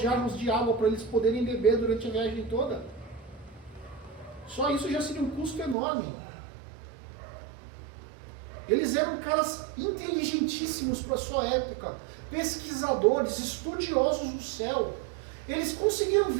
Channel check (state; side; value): drops out; left; at 5.8 s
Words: jarros de água para eles poderem beber durante a viagem toda. Só isso já seria um custo enorme. Eles eram caras inteligentíssimos para a sua época, pesquisadores, estudiosos do céu. Eles conseguiram